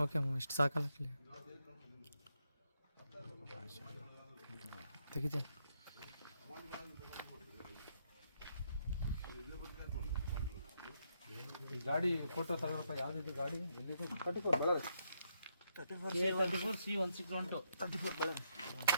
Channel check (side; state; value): both; inverted; correlation -0.77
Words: ಓಕೆ ಅಮ್ಮ, ಇಷ್ಟು ಸಾಕಲ್ಲ ಅಲ್ಲಿ ತೆಗಿತೀನಿ. ಈ ಗಾಡಿ ಫೋಟೋ ತಗೋಪ್ಪ. ಯಾವ್ದಿದೆ ಗಾಡಿ? ಎಲ್ಲಿದು? 34 ಬಳ್ಳಾರಿ. A34C161 34 ಬಳ್ಳಾರಿ.